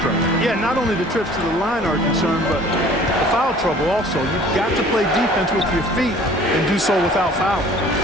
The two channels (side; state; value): both; normal; correlation 0.51